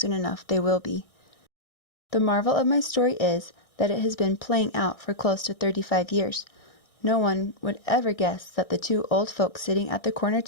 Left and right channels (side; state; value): right; late; 1.6 ms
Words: enough, they will be. The marvel of my story is that it has been playing out for close to 35 years. No one would ever guess that the two old folks sitting at the corner